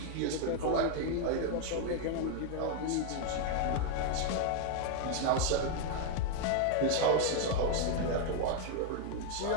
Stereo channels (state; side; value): different; both; correlation 0.00